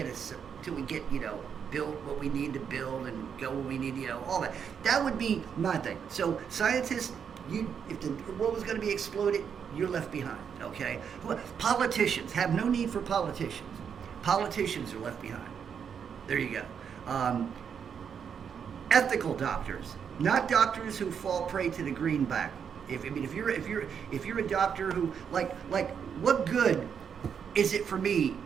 built what we need to build and go where we need, all that. That would be my thing. So scientists. If the world was going to be exploded, you're left behind, okay? Politicians have no need for politicians. Politicians are left behind. There you go. Ethical doctors, not doctors who fall prey to the greenback. If you're a doctor who like what good is it for me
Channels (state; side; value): quieter; left; 7.3 dB